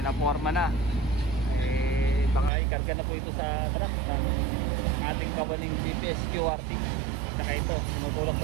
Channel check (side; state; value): left; drops out; at 2.5 s